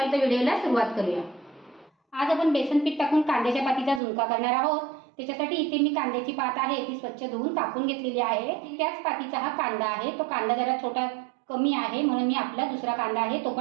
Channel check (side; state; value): left; drops out; at 4.0 s